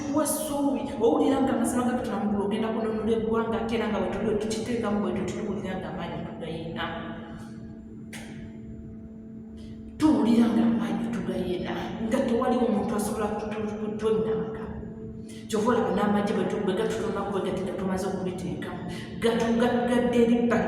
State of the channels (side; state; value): both; identical; correlation 1.00